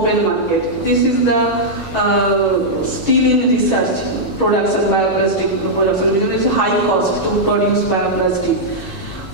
market. This is the still in research production, bioplastic production, because it's high cost to produce bioplastic.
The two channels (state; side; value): late; right; 6.9 ms